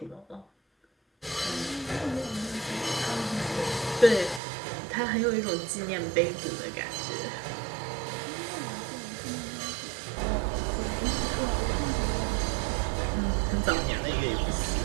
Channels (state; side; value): drops out; left; at 4.4 s